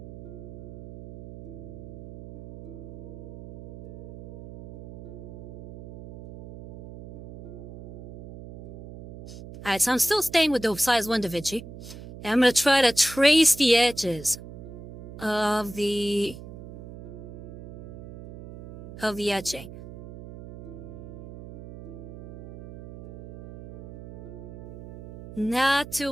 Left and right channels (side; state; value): right; noise; hum, 15 dB below the sound